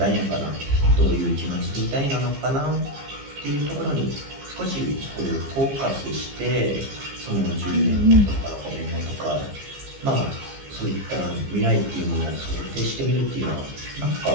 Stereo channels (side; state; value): left; late; 15 ms